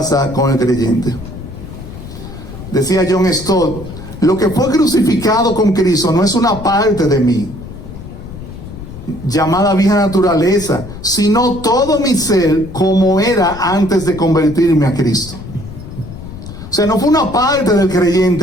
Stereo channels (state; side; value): noise; left; rumble, 13 dB below the sound